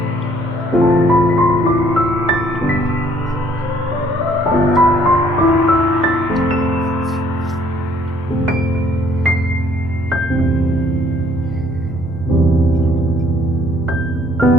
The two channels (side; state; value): both; normal; correlation 0.62